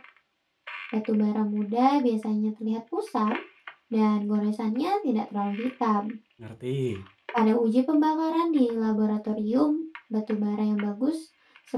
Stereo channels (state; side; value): identical; both; correlation 1.00